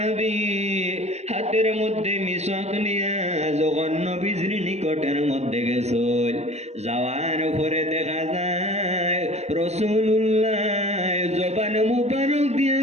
হাতের মধ্যে মিসওয়াক নিয়া যখন নবীজির নিকটের মধ্যে গেছিল, যাওয়ার পরে দেখা যায় রাসূলুল্লাহ জবান মুবারক দিয়ে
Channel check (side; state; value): left; late; 0.32 ms